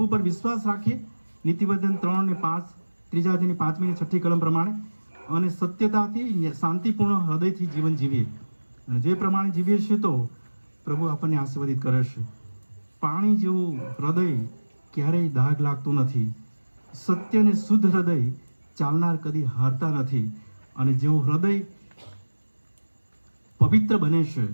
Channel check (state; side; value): inverted; both; correlation -1.00